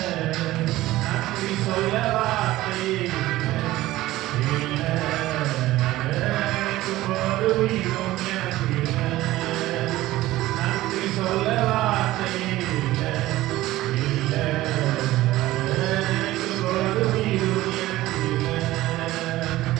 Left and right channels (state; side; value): quieter; left; 16.5 dB